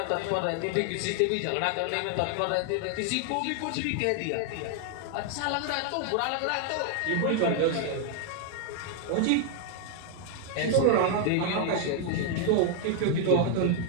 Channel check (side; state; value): both; different; correlation 0.00